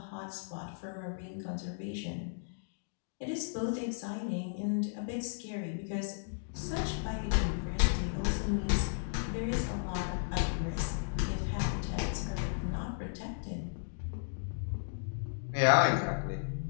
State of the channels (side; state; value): right; silent; digital silence